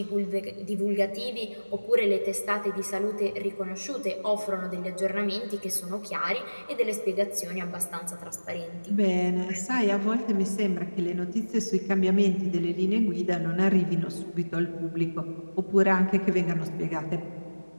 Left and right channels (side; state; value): both; inverted; correlation -1.00